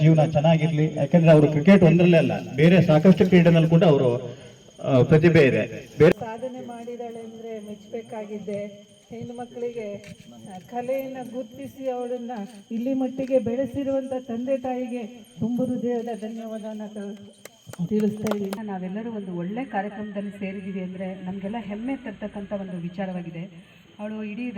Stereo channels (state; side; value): identical; both; correlation 1.00